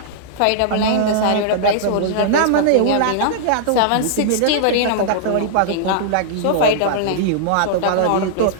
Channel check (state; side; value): different; both; correlation -0.01